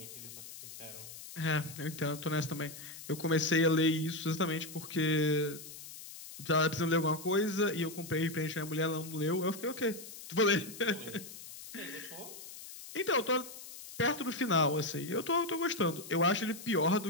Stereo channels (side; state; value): left; noise; hiss, 13 dB below the sound